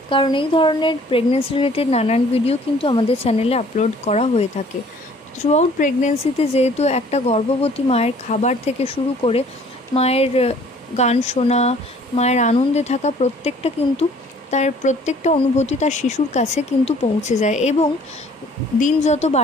কারণ এই ধরনের প্রেগনেন্সি রিলেটেড নানান ভিডিও কিন্তু আমাদের চ্যানেলে আপলোড করা হয়ে থাকে। থ্রুআউট প্রেগনেন্সিতে যেহেতু একটা গর্ভবতী মায়ের খাবার থেকে শুরু করে মায়ের গান শোনা, মায়ের আনন্দে থাকা প্রত্যেকটা কিন্তু তার প্রত্যেকটা অনুভূতি তার শিশুর কাছে কিন্তু পৌঁছে যায়। এবং দিন যত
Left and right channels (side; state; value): both; normal; correlation 0.55